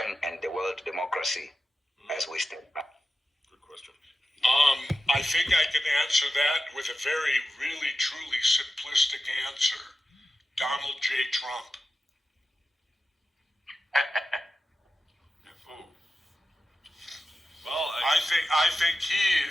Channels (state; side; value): normal; both; correlation 0.92